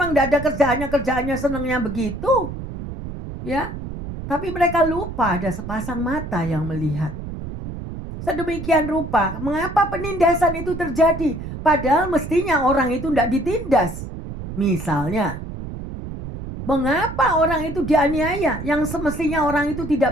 tidak ada kerjaannya senangnya begitu. Ya, tapi mereka lupa ada sepasang mata yang melihat. Sedemikian rupa, mengapa penindasan itu terjadi? Padahal mestinya orang itu tidak ditindas. Misalnya, mengapa orang itu dianiaya? Yang semestinya orang itu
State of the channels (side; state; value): right; noise; rumble, 9 dB below the sound